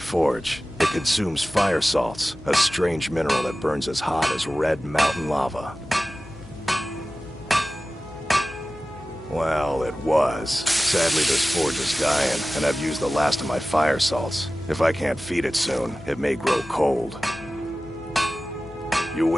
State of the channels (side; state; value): left; noise; hum, 19 dB below the sound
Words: It consumes fire salts, a strange mineral that burns as hot as red mountain lava. Well, it was. Sadly, this forge is dying, and I've used the last of my fire salts. If I can't feed it soon, it may grow cold. You